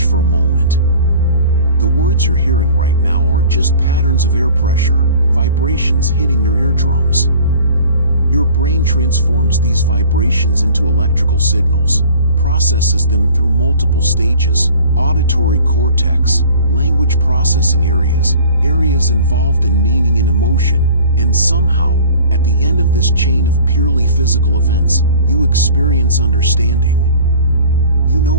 for a moment. The words you're hearing right now are just patterns of air pressure, vibrations hitting your eardrums. Your brain transforms these vibrations into electrical signals, processes them through multiple stages: auditory cortex, language processing areas, areas involved in meaning and emotion, and somehow, at the end of this chain of purely physical events, you experience understanding. You know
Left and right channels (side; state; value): both; inverted; correlation -0.47